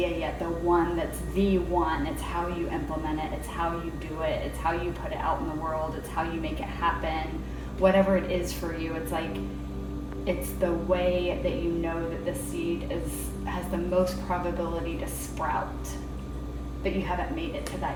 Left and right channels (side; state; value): both; identical; correlation 1.00